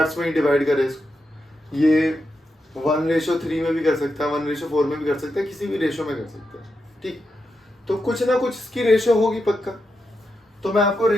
में ही डिवाइड करे इसको, ये 1:3 में भी कर सकता है, 1:4 में भी कर सकता है, किसी भी रेशो में कर सकता है, ठीक। तो कुछ ना कुछ इसकी रेशो होगी पक्का। तो मैं आपको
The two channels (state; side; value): normal; both; correlation 0.86